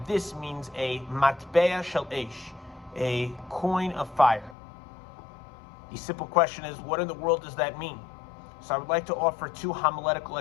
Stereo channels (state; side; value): drops out; right; at 4.5 s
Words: this means a matbea shel esh, a coin of fire. The simple question is, what in the world does that mean? So I would like to offer two homiletical